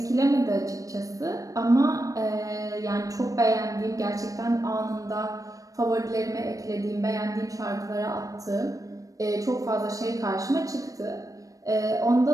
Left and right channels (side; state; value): left; late; 0.16 ms